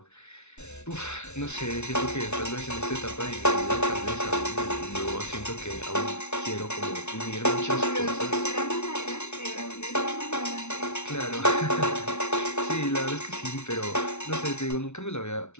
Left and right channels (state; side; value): late; right; 0.82 ms